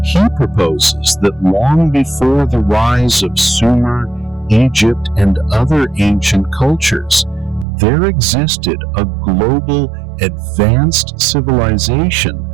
He proposes that long before the rise of Sumer, Egypt, and other ancient cultures, there existed a global advanced civilization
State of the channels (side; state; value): left; drops out; at 7.7 s